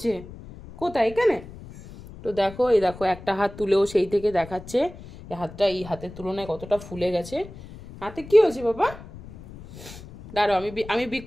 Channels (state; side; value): noise; left; rumble, 16 dB below the sound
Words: কোথায়? এখানে? তো দেখো, এই দেখো একটা হাত তুলেও সেই থেকে দেখাচ্ছে এই হাতটা এই হাতের তুলনায় কতটা ফুলে গেছে। হাতে কি হয়েছে বাবা? দাঁড়াও, আমি